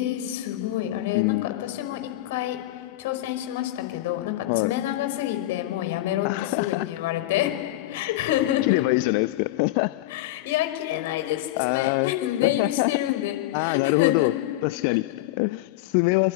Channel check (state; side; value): quieter; right; 16.1 dB